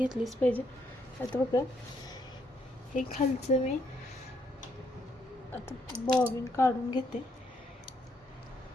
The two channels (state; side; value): normal; both; correlation 0.73